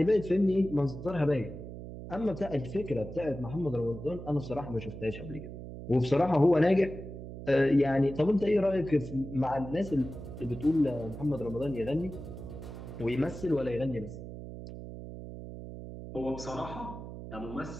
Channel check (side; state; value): right; noise; hum, 11 dB below the sound